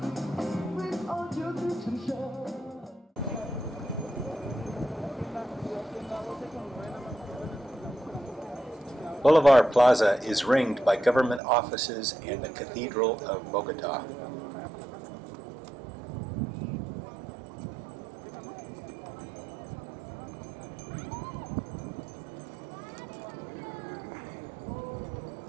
Boulevard Plaza is ringed by government offices and the Cathedral of Bogota.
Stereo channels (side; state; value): left; drops out; at 11.4 s